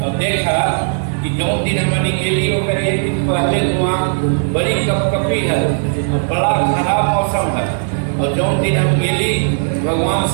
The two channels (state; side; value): silent; left; digital silence